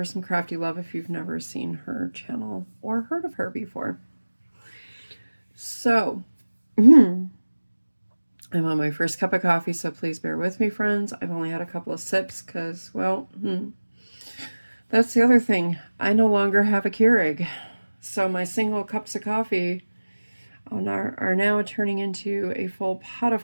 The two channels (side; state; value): both; inverted; correlation -1.00